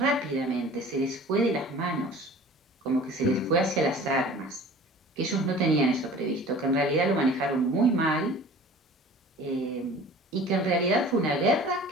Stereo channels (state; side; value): normal; both; correlation 0.44